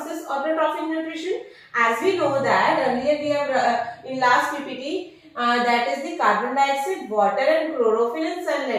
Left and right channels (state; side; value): identical; both; correlation 1.00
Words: is autotrophic nutrition। as we know that earlier we have in last ppt that is the carbon dioxide, water and chlorophyll and